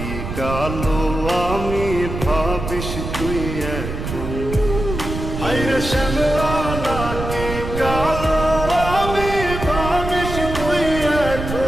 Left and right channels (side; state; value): right; noise; rumble, 6 dB below the sound